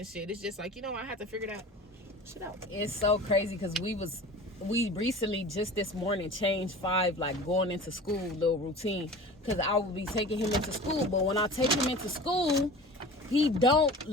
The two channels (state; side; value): normal; both; correlation 0.38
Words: shit. It's just like, you know, I had to figure that shit out. It's so crazy, because we recently just this morning changed 5 like going into school little routine, because I would be taking him into school, but when I take him into school, he don't